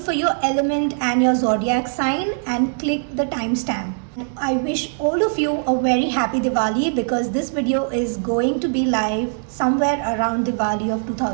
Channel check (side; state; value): left; silent; digital silence